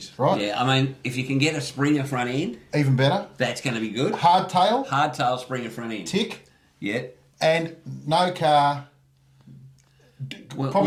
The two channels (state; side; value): identical; both; correlation 1.00